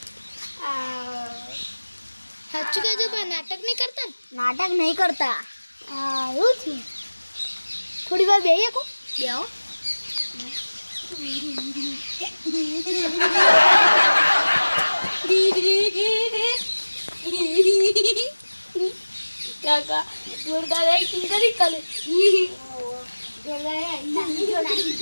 સાચું કહેજો પણ નાટક નહીં કરતા ને? નાટક નહીં કરતા. હા એવું થયું. થોડી વાર બેહીએ કો બેહો. કાકા જોરદાર એક્ટિંગ કરી કાલે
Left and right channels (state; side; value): inverted; both; correlation -1.00